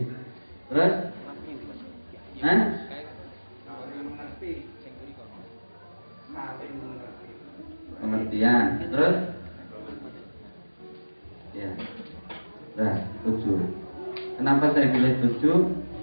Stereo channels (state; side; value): inverted; both; correlation -1.00